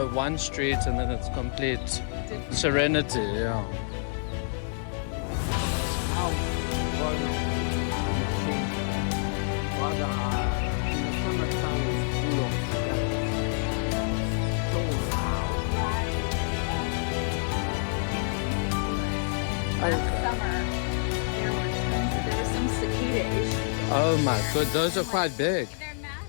one street and then it's complete serenity. Yeah. Last summer, there were some cicada issues. Oh my god, those are quite big. They're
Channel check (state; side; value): silent; right; digital silence